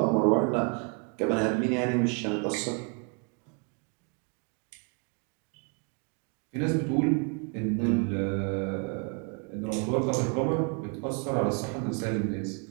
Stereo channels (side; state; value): left; quieter; 35.6 dB